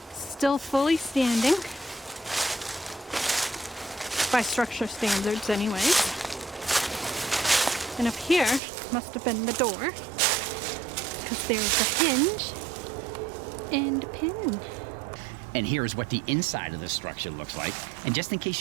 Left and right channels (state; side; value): drops out; left; at 8.6 s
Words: Still fully standing. By structure standards anyways. And up here must have been the door, because there's a hinge and a pin. And here's what the inside of the structure looks like. And just in case